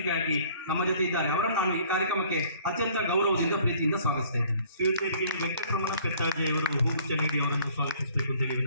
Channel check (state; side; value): inverted; both; correlation -0.55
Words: ನಮ್ಮ ಜೊತೆ ಇದ್ದಾರೆ. ಅವರನ್ನು ನಾನು ಈ ಕಾರ್ಯಕ್ರಮಕ್ಕೆ ಅತ್ಯಂತ ಗೌರವದಿಂದ ಪ್ರೀತಿಯಿಂದ ಸ್ವಾಗತಿಸ್ತಾ ಇದ್ದೇನೆ. ಶ್ರೀಯುತರಿಗೆ ವೆಂಕಟರಮಣ ಪೆತ್ತಾಜಿ ಅವರು ಹೂಗುಚ್ಛ ನೀಡಿ ಅವರನ್ನು ಸ್ವಾಗತಿಸಬೇಕು ಅಂತೇಳಿ